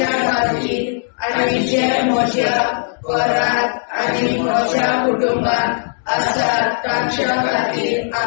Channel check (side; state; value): right; silent; digital silence